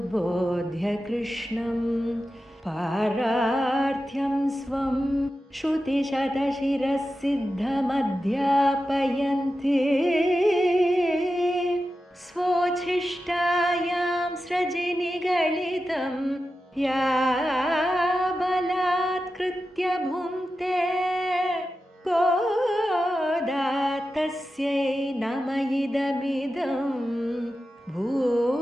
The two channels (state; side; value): normal; both; correlation 0.92